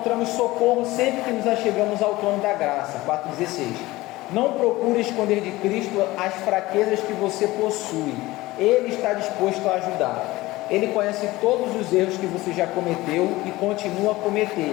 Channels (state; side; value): quieter; right; 19.0 dB